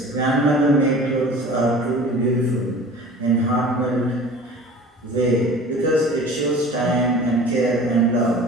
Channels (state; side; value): normal; both; correlation 0.42